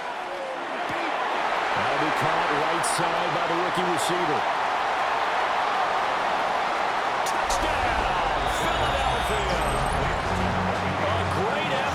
That'll be caught right side by the rookie receiver. Touchdown, Philadelphia! A great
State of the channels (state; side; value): identical; both; correlation 1.00